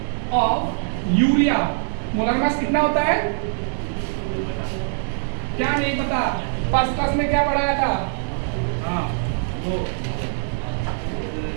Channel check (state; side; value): silent; left; digital silence